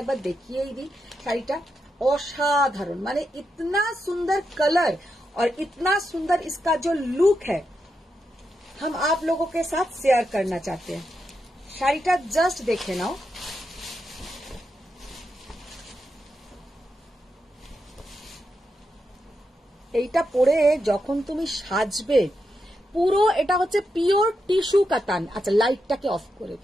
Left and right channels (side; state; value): both; normal; correlation 0.85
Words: बार देखिए ही दी। শাড়িটা असाधारण, माने इतना सुंदर कलर और इतना सुंदर इसका जो लुक है, हम आप लोगों के साथ शेयर करना चाहते हैं। শাড়িটা जस्ट देखे नाओ। এইটা পরে যখন তুমি সাজবে, পুরো এটা হচ্ছে পিওর টিস্যু কাতান। আচ্ছা, লাইটটাকে অফ করে